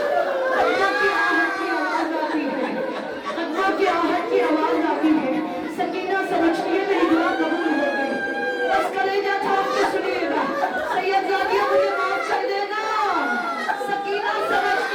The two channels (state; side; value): identical; both; correlation 1.00